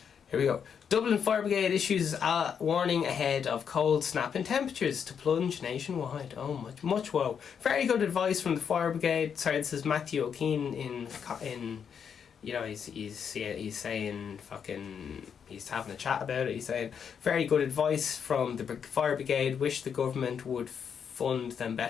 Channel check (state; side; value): quieter; right; 7.3 dB